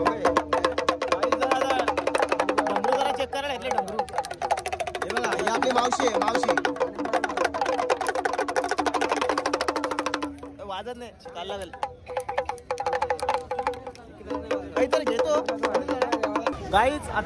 डमरू जरा चेक करायला घेतले डमरू. हे बघा ही आपली मावशी आहे मावशी. वाजत नाही चाल लागेल काहीतरी घेतो. गाईच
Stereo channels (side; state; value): both; identical; correlation 1.00